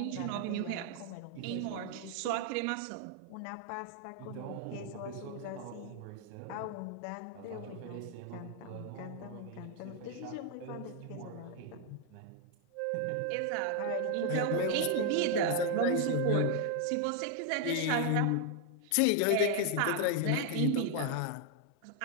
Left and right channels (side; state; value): both; different; correlation 0.00